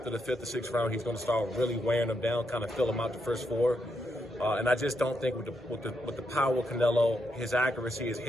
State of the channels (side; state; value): both; normal; correlation 0.80